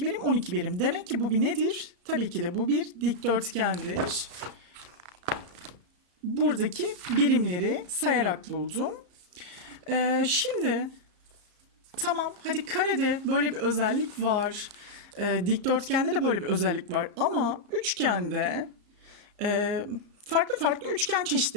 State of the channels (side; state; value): left; late; 34 ms